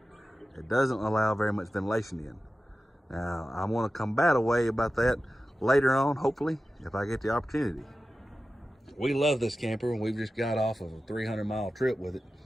It doesn't allow very much ventilation in. Now, I want to combat a way about that later on, hopefully, if I get the opportunity. We love this camper, and we've just got off of a 300-mile trip with it.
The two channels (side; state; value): both; normal; correlation 0.94